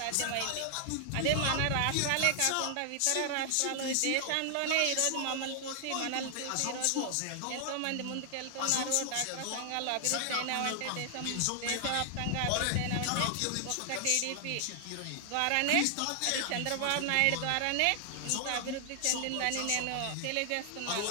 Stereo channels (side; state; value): both; different; correlation 0.00